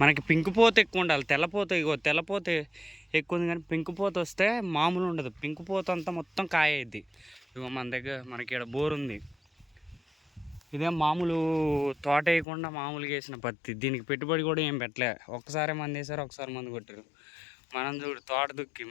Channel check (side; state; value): right; drops out; at 12.5 s